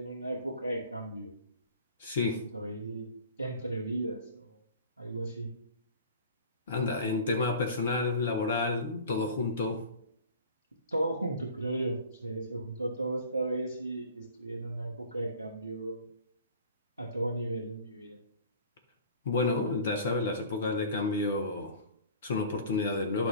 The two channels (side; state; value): both; inverted; correlation -0.43